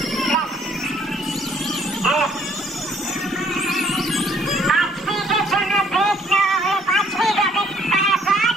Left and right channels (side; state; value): both; normal; correlation 0.63